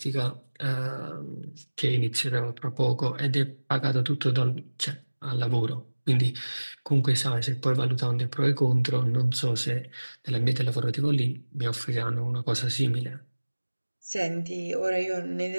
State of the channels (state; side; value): inverted; both; correlation -1.00